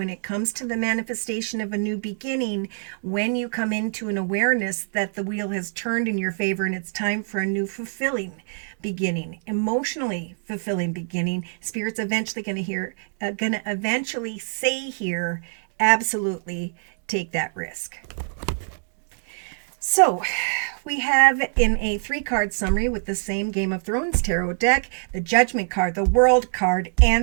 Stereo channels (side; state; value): left; silent; digital silence